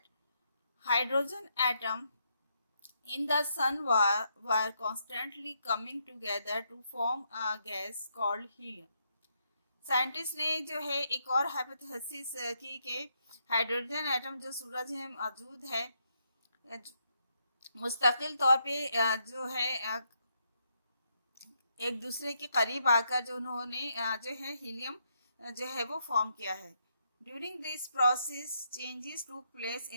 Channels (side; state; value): both; inverted; correlation -0.78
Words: hydrogen atom in the sun were constantly coming together to form a gas called helium. Scientist ने जो है एक और हाइपोथेसिस की कि हाइड्रोजन एटम जो सूरज में मौजूद है मुस्तकिल तौर पे जो है एक दूसरे के करीब आकर जो उन्होंने जो है हीलियम जो है वो फॉर्म किया है. During this process changes to place